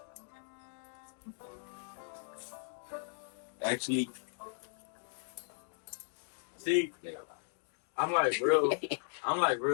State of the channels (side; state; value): right; silent; digital silence